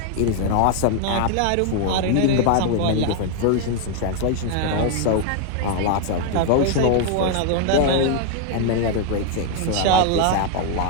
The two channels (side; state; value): both; different; correlation 0.00